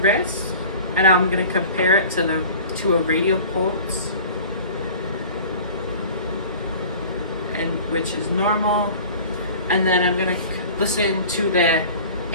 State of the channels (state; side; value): inverted; both; correlation -0.42